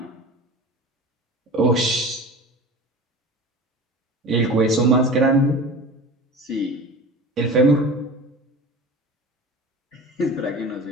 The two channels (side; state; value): both; normal; correlation 0.36